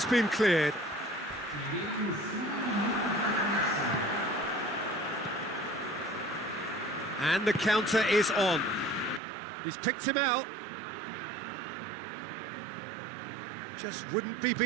been cleared. And the counter is on. He's picked him out. Just wouldn't be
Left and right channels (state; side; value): drops out; left; at 9.2 s